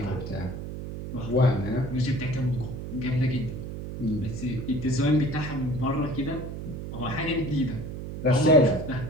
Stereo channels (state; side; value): noise; right; hum, 8 dB below the sound